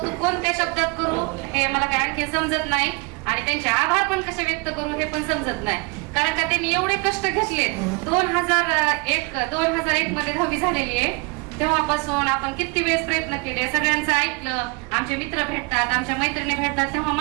कोणत्या शब्दात करू हे मला काय आणखी समजत नाही आणि त्यांचे आभार पण कसे व्यक्त करू हे पण समजत नाही. कारण का त्यांनी एवढे कष्ट घेतले. 2001 मध्ये 10वी झालेली आहे. तेव्हापासून आपण किती वेळेस प्रयत्न केले, सगळ्यांचं ऐकलं. आमचे मित्र भेटतात, आमच्या मैत्रिणी भेटतात, तेव्हा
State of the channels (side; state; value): left; quieter; 29.0 dB